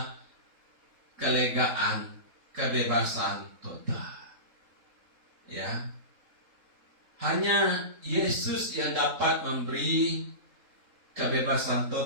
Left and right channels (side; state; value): left; late; 3.8 ms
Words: kelegaan kebebasan total. Ya. Hanya Yesus yang dapat memberi kebebasan